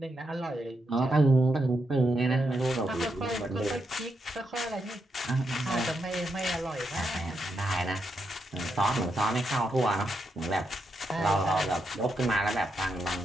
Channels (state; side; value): normal; both; correlation 0.82